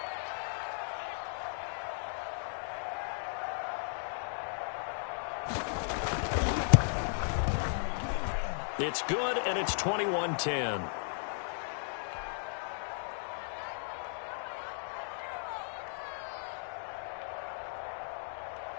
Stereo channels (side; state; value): right; silent; digital silence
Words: It's good, and it's 21-10.